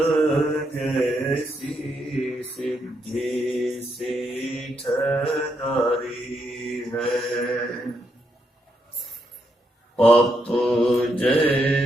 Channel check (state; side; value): normal; both; correlation 0.79